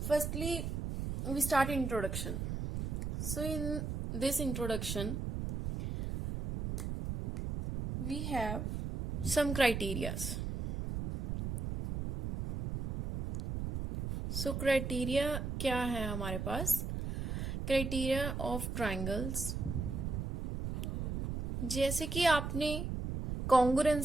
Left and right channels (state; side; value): noise; right; rumble, 3 dB below the sound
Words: Firstly, we start introduction. So in this introduction, we have some criterias. So criteria क्या है हमारे पास? Criteria of triangles, जैसे कि आपने